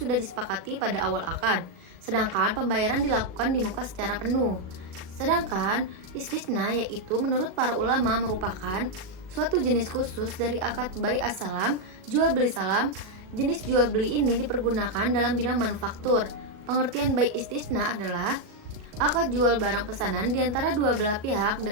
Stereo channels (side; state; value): left; late; 38 ms